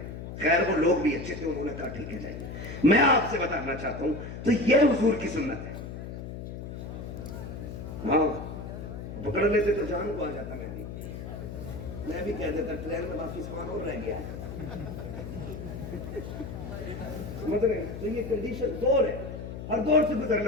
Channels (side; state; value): left; noise; hum, 8 dB below the sound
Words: خیر وہ لوگ بھی اچھے تھے, انہوں نے کہا ٹھیک ہے جائیے. میں آپ سے بتانا چاہتا ہوں تو یہ حضور کی سنت ہے. ہاں, پکڑ لیتے تو جان کو آ جاتا. میں بھی کہہ دیتا ٹرین میں باقی سامان اور رہ گیا ہے. سمجھ رہے ہیں؟ تو یہ کنڈیشن دور ہے, ہر دور سے